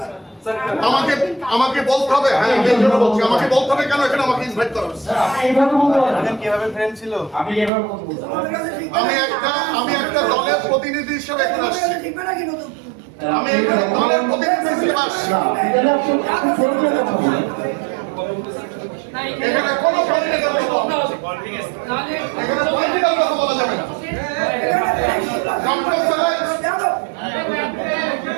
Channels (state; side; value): drops out; left; at 7.7 s